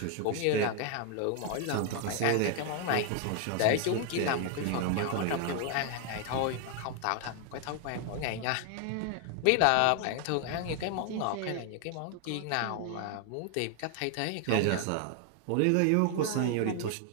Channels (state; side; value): different; both; correlation 0.00